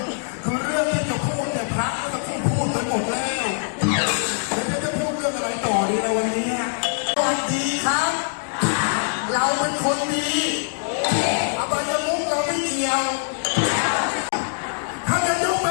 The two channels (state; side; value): silent; right; digital silence